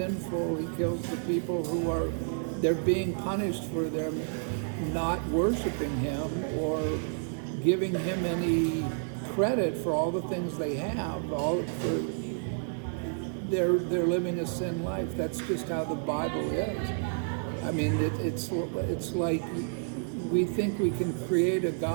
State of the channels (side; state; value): left; silent; 58 dB below the other